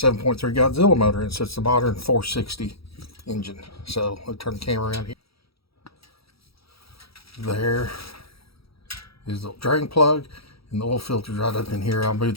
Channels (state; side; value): late; right; 0.76 ms